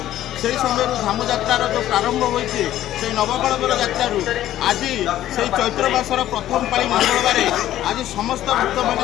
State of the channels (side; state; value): right; quieter; 13.0 dB